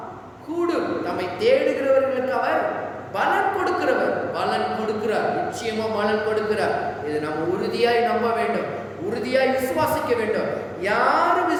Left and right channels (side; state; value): both; identical; correlation 1.00